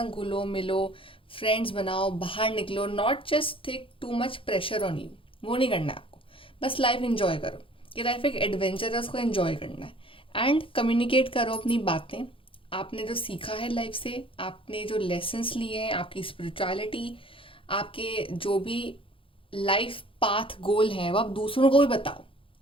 घुलो मिलो, फ्रेंड्स बनाओ, बाहर निकलो. Not just take too much pressure on you, वो नहीं करना है आपको. बस लाइफ एंजॉय करो. ये लाइफ एक एडवेंचर है, उसको एंजॉय करना है. एंड कम्युनिकेट करो अपनी बातें, आपने जो सीखा है लाइफ से, आपने जो लेसन्स लिए हैं, आपकी स्पिरिचुअलिटी, आपके जो भी लाइफ पाथ गोल है, वो आप दूसरों को भी बताओ.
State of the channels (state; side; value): late; right; 0.26 ms